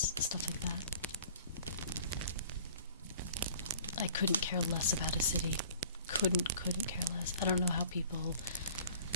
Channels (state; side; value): inverted; both; correlation -0.47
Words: stuff like that. I couldn't care less about a city. Couldn't care less. I don't know how people